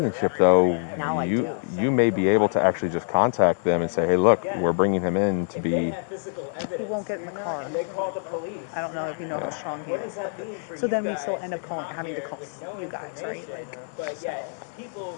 though, Now I do. you may be able to actually just contact them and say, hey, look, we're bringing him in to be. He won't get in the car. I don't know if you know how strong he is. So then we still end up having to call you guys, right? Like, so. He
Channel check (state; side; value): silent; right; 57 dB below the other